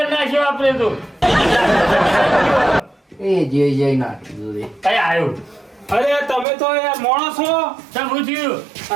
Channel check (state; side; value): drops out; left; at 6.5 s